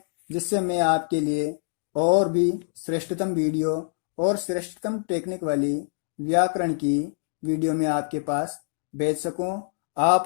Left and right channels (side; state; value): right; silent; digital silence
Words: जिससे मैं आपके लिए और भी श्रेष्ठतम वीडियो और श्रेष्ठतम टेक्निक वाली व्याकरण की वीडियो में आपके पास भेज सकूं।